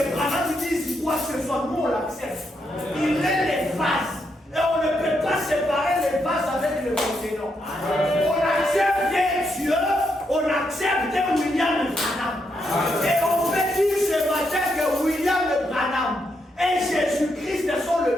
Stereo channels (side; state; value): both; normal; correlation 0.80